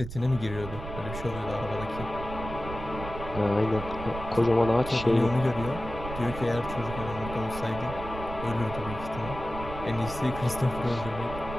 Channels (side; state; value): right; noise; rumble, 9 dB below the sound